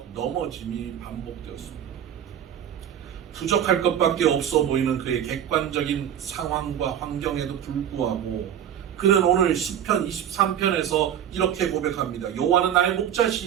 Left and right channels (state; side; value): quieter; left; 9.7 dB